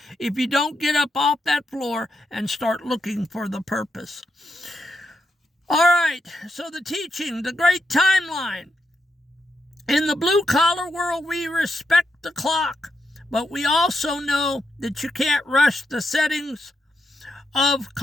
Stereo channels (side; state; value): both; normal; correlation 0.83